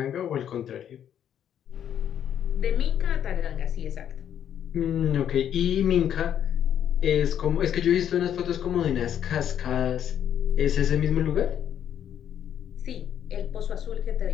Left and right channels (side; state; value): right; quieter; 9.7 dB